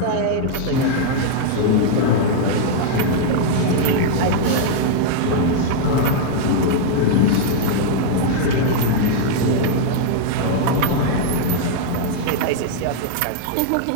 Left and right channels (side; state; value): both; different; correlation -0.01